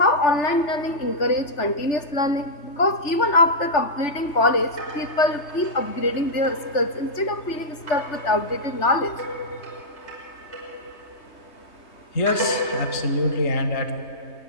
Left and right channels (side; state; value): right; late; 3.2 ms